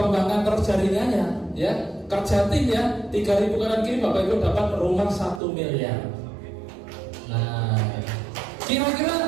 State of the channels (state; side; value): drops out; left; at 5.4 s